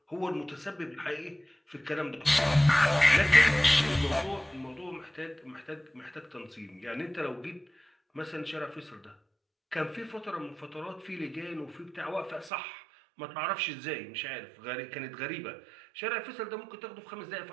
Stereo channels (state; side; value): drops out; left; at 12.5 s